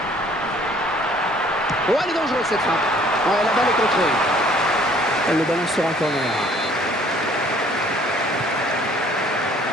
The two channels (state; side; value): normal; both; correlation 0.57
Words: Oh, elle est dangereuse cette frappe. Ouais, la balle est contrée. Et le ballon sera en corner.